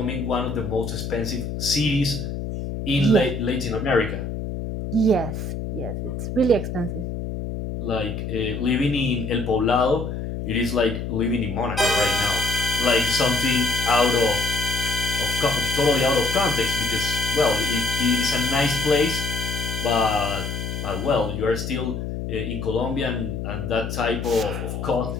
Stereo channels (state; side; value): noise; left; hum, 5 dB below the sound